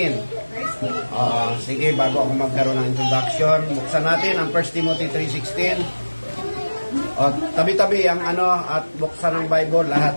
Sige, bago ako magkaroon ng introduction, buksan natin ang 1 Timothy 3:16. Tabi-tabi ang at buksan ng Bible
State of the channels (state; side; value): inverted; both; correlation -1.00